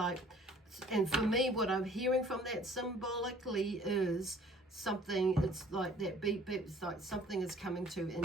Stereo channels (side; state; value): both; normal; correlation 0.54